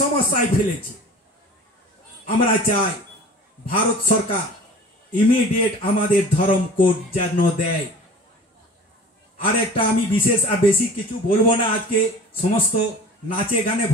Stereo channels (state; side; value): normal; both; correlation 0.41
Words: সমস্যায় ফেলেছে। আমরা চাই ভারত সরকার ইমিডিয়েট আমাদের ধর্ম কোড যেন দেয়। আর একটা আমি বিশেষ আর বেশি কিছু বলবো না, আজকে সমস্ত নাচে গানে